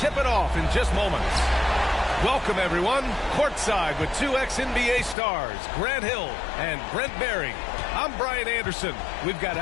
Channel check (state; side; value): drops out; right; at 5.2 s